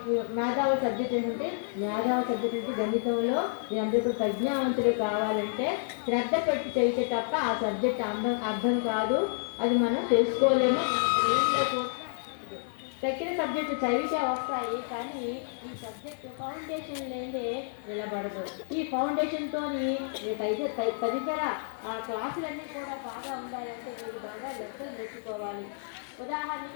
సబ్జెక్ట్ ఏంటంటే గణితంలో మీరందరూ ప్రజ్ఞావంతులు కావాలంటే శ్రద్ధ పెట్టి చదివితే తప్ప ఆ సబ్జెక్ట్ అర్థం కాదు. అది మనం తెలుసుకోలేము. తక్కిన సబ్జెక్టు చదివితే వస్తాయి, కానీ ఈ సబ్జెక్టు ఫౌండేషన్ లేదే నిలబడదు. ఈ ఫౌండేషన్తో తదితర క్లాసులన్నీ కూడా బాగా ఉండాలంటే మీరు బాగా లెక్కలు నేర్చుకోవాలి.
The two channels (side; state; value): right; silent; 58 dB below the other